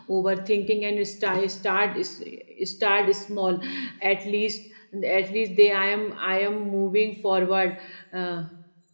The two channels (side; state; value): both; inverted; correlation -1.00